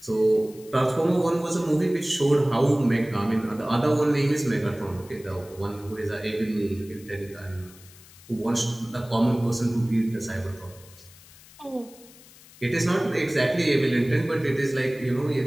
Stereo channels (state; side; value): noise; left; hiss, 22 dB below the sound